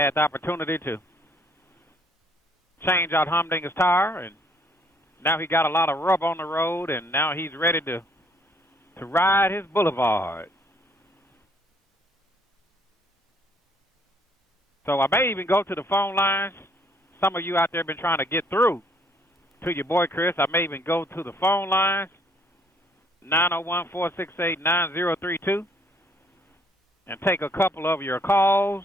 the opportunity to change out Humdinger's tire, and now he got a lot of rub on the road, and now he's ready to ride his boulevard. So I may even go to the phone lines. Some of you out there have been trying to get through to your boy Chris. I may even go to the phone lines, 901-468-9032, and take a couple of your calls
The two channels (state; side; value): normal; both; correlation 0.64